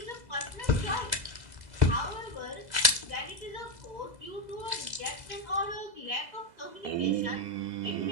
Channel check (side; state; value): left; late; 2.0 ms